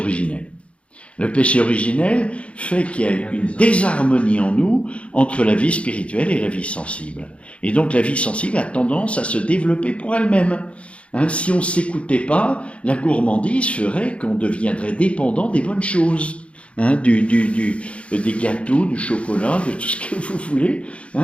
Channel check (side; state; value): right; late; 0.061 ms